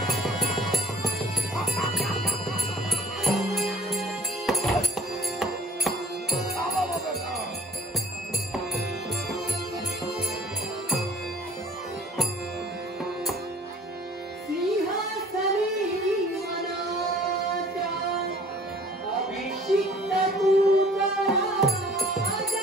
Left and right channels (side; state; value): both; normal; correlation 0.52